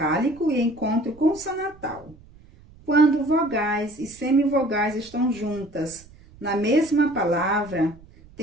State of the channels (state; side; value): noise; right; rumble, 24 dB below the sound